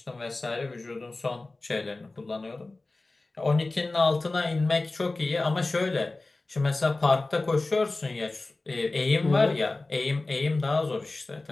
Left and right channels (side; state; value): right; quieter; 3.2 dB